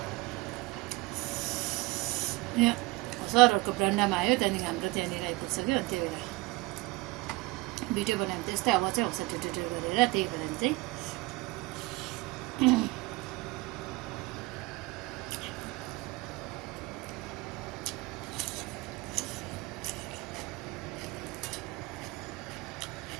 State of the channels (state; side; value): quieter; left; 22.2 dB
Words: यहाँ सरहरूको ब्रान्डामा आयो, त्यहाँदेखि हाम्रो त्यहाँनिर आइपुग्छ कि, अनि त्यही भएर भिडियो बनायो भने त्यस्तै आवाज चाहिँ आउँछ ट्याट्याट्याट गरेर, त्यही भएर चाहिँ